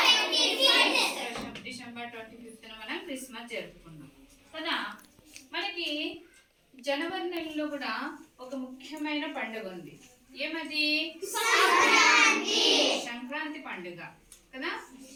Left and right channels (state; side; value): identical; both; correlation 1.00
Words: డిసెంబర్ 25న మనం క్రిస్మస్ జరుపుకున్నాం కదా. మనకి జనవరి నెలలో కూడా ఒక ముఖ్యమైన పండుగ ఉంది. ఏమది? సంక్రాంతి పండుగ కదా.